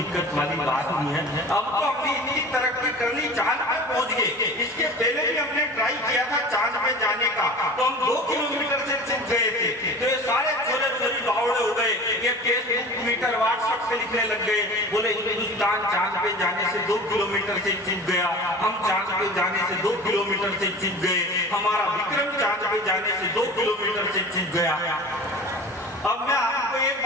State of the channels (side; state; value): both; normal; correlation 0.38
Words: वाली बात नहीं है। अब तो हमने इतनी तरक्की कर ली, चांद पे पहुंच गए। इसके पहले भी हमने ट्राई किया था चांद पे जाने का, तो हम 2 किलोमीटर से चूक गए थे। तो ये सारे छोटे छोटे बावड़े हो गए, ये फेसबुक, ट्विटर, व्हाट्सएप पे लिखने लग गए, बोले हिंदुस्तान चांद पे जाने से 2 किलोमीटर से चूक गया, हम चांद पे जाने से 2 किलोमीटर से चूक गए, हमारा विक्रम चांद पे जाने से 2 किलोमीटर से चूक गया। अब मैं आपको एक